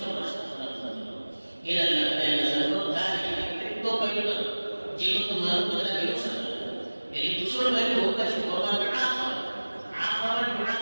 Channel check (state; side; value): inverted; both; correlation -1.00